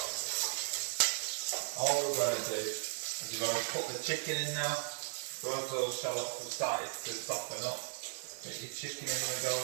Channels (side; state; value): left; silent; 53 dB below the other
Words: All we're going to do is we're going to put the chicken in now. So as those shallots have started to soften up, get your chicken in the go.